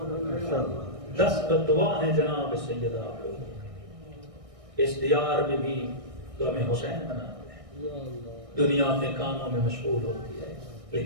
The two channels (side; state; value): left; late; 1.6 ms